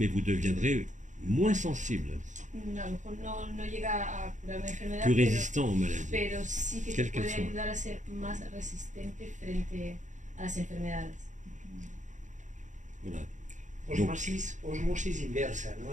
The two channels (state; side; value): late; left; 0.36 ms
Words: vous deviendrez moins sensible, A lo mejor no llega a curar una enfermedad, plus résistant aux maladies. pero sí que te Quelle qu'elle puede soit. ayudar a ser más resistente frente a las enfermedades. Voilà. Osmosis inversa,